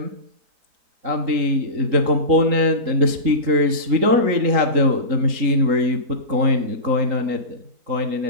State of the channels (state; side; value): late; left; 3.8 ms